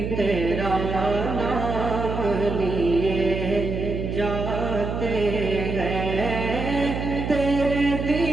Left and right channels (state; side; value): noise; right; hum, 4 dB below the sound